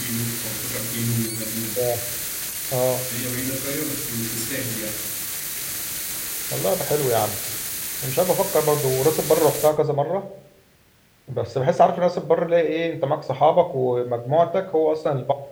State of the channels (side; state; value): both; identical; correlation 1.00